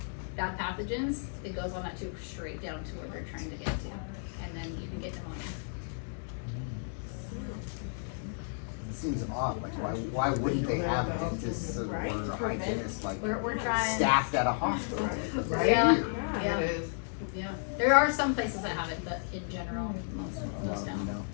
bad pathogens, it goes on that tube straight down to where they're trying to get to, and then you can get pneumonia. It seems odd, like why wouldn't they have dentists or hygienists like We're trying. staffed at a hospital? Right? Yeah. Weird. Yeah. It is. Yeah, there are some places that have it, but in general, most don't. No.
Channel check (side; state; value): right; silent; digital silence